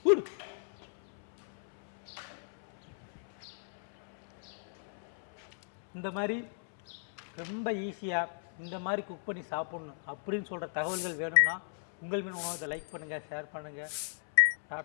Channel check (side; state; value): right; silent; 54 dB below the other